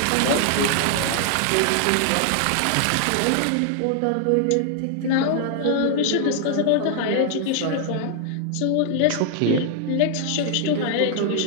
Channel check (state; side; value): different; both; correlation 0.00